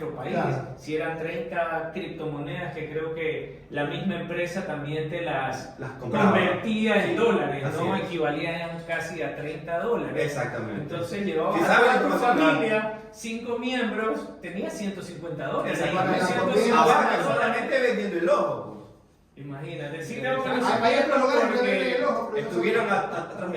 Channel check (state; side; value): identical; both; correlation 1.00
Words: país. Claro. Si eran 30 criptomonedas que creo que la misma empresa también te las compraba. convertía en Sí, dólares, así ¿no? es. Equivalían casi a $30. Exactamente. Entonces llevabas Si a sabes toda tu información, familia, 5 miembros, tenía $150. Exacto. Y Para la 150 comida, Ahora dólares. solamente vendiendo el ojo. Imagínate, sí Hay- tengo que Hay otros lugares que porque venden el ojo, pero no Estuvieron son- atrás